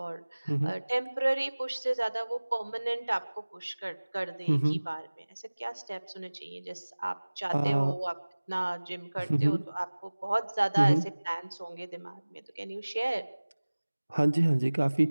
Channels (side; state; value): both; inverted; correlation -1.00